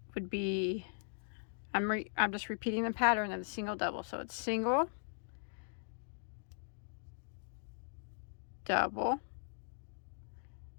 be, I'm just repeating the pattern of the single double. So it's single, double,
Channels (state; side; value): silent; right; digital silence